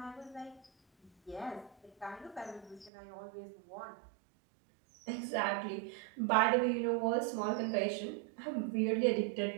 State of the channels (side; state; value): left; drops out; at 2.9 s